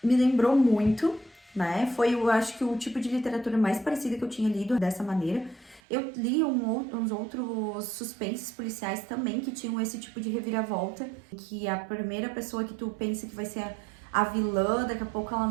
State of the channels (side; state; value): left; drops out; at 5.8 s